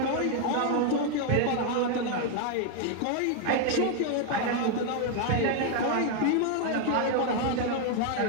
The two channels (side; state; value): both; different; correlation 0.00